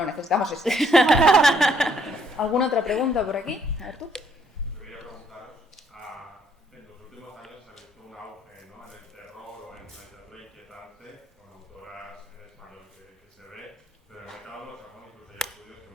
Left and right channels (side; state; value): both; normal; correlation 0.67